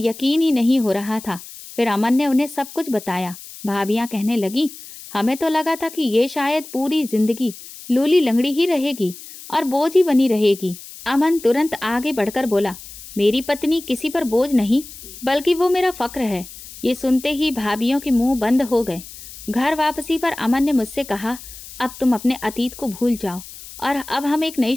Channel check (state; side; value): noise; left; hiss, 16 dB below the sound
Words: ही नहीं हो रहा था। फिर अमन ने उन्हें सब कुछ बताया। भाभियां कहने लगी, हमें तो लगा था कि ये शायद पूरी जिंदगी लूली लंगड़ी ही रहेगी और बोझ ही बनी रहेगी। अमन तुरंत आगे बढ़कर बोला, मेरी पत्नी किसी पर बोझ नहीं बल्कि वो मेरा फक्र है। ये सुनते ही भाभियों के मुंह बंद हो गए। घर वापसी पर अमन ने मुझसे कहा, अब तुम अपने अतीत को भूल जाओ और अब हम एक नई